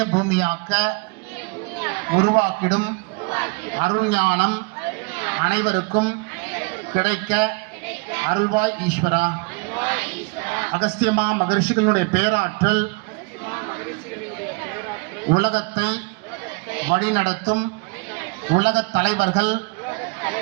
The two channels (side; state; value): left; quieter; 29.8 dB